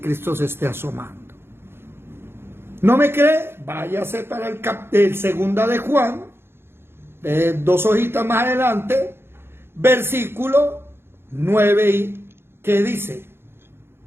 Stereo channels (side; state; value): left; late; 0.11 ms